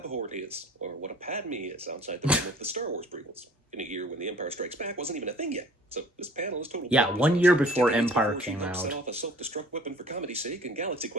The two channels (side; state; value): both; normal; correlation 0.49